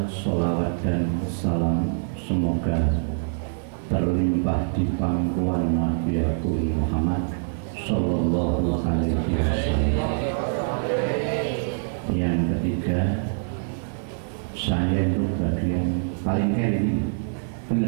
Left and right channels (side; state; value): left; silent; digital silence